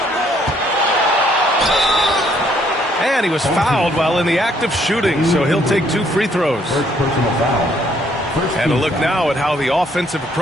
And he was fouled while in the act of shooting, so he'll take 2 free throws. First personal foul. And a look now at how the offensive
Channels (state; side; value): normal; both; correlation 0.67